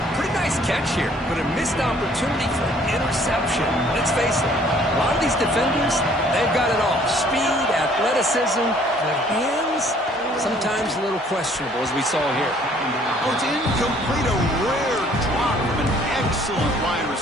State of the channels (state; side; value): normal; both; correlation 0.59